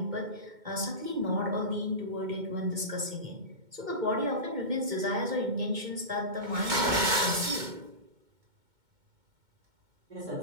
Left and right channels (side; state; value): left; late; 2.2 ms